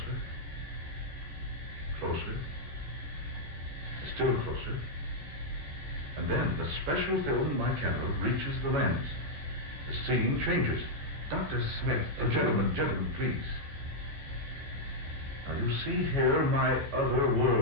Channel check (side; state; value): left; late; 14 ms